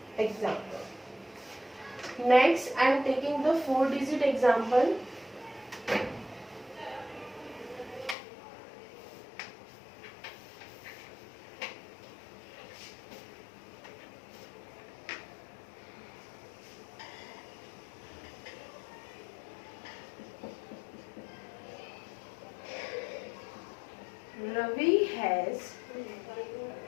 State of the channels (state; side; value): drops out; right; at 8.2 s